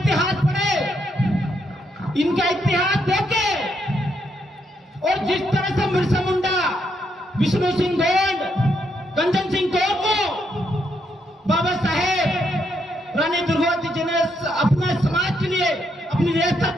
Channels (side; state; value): both; normal; correlation 0.77